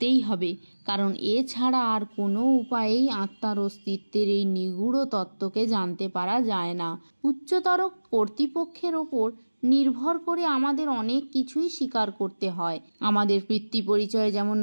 হবে, কারণ এছাড়া আর কোনো উপায়েই আত্মার অস্তিত্বের এই নিগূঢ় তত্ত্বকে জানতে পারা যায় না। উচ্চতর কর্তৃপক্ষের ওপর নির্ভর করে আমাদের অনেক কিছুই স্বীকার করতে হয়। আমাদের পিতৃ পরিচয় যেমন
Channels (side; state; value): both; inverted; correlation -1.00